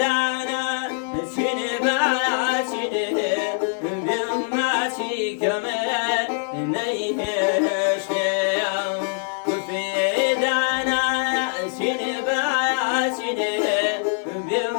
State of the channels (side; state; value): right; silent; digital silence